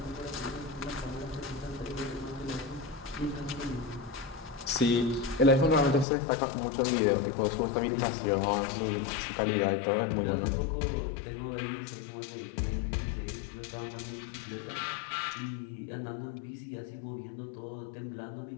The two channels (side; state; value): right; drops out; at 6.1 s